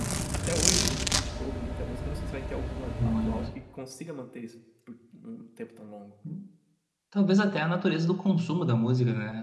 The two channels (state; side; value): identical; both; correlation 1.00